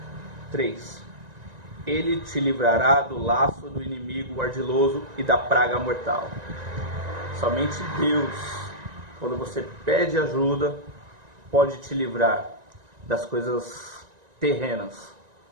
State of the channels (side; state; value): left; late; 1.9 ms